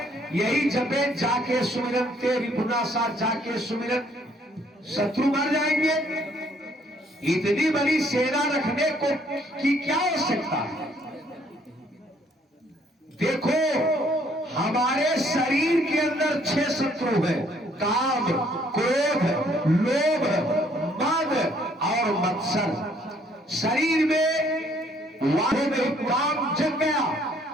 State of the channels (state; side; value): normal; both; correlation 0.64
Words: यही जपे जाके सुमिरन तेरी पुनासा, जाके सुमिरन, शत्रु मर जाएंगे। इतनी बड़ी सेना रखने को की क्या आवश्यकता है? देखो हमारे शरीर के अंदर 6 शत्रु है, काम, क्रोध, लोभ, मद और मत्सर। शरीर में वाहों में काम जग गया